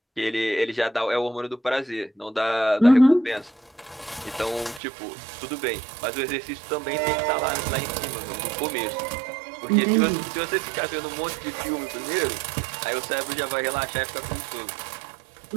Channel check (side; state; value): left; drops out; at 4.8 s